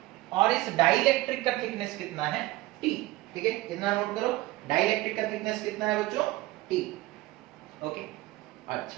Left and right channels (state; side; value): quieter; left; 18.1 dB